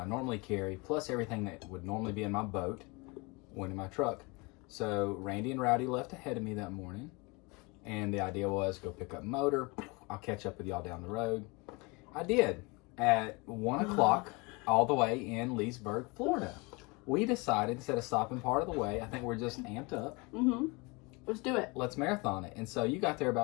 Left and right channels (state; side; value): quieter; right; 27.4 dB